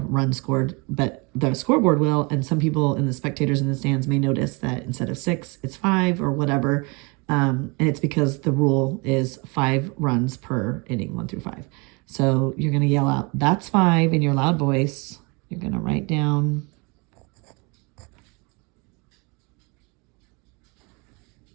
scored, but the scoreboard will. And some people and the spectators in the stands may notice that instead of 6, it's 5 or whatever. And it's because the rule is 5 runs per inning, 1 through 5. So you're going to yell out, "That's 5" in your loud voice. You're going to write down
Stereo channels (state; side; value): quieter; left; 29.3 dB